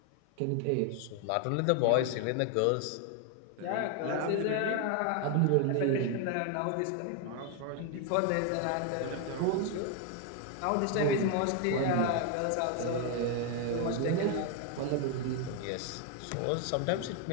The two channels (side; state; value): both; different; correlation 0.01